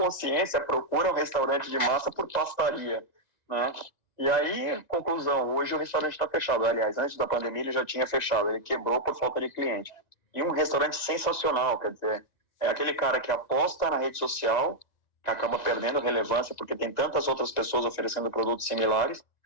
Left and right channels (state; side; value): late; right; 1.9 ms